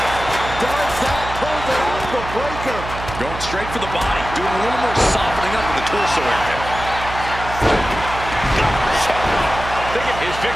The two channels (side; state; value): right; noise; hum, 9 dB below the sound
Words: Does that pull it off the breaker? Going straight for the body. Doing a little more softening up in the torso area. Thinking, is